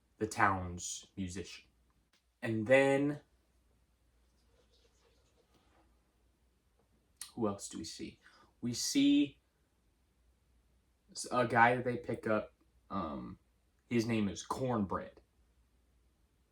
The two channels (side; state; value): both; identical; correlation 1.00